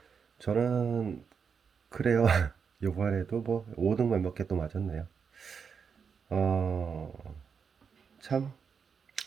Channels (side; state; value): left; quieter; 6.3 dB